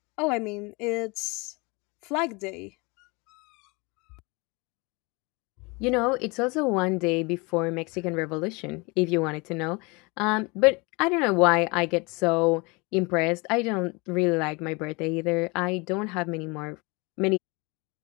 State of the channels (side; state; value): right; quieter; 27.6 dB